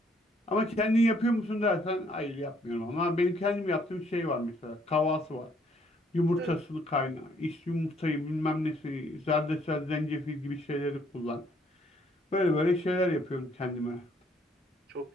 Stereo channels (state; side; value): normal; both; correlation 0.66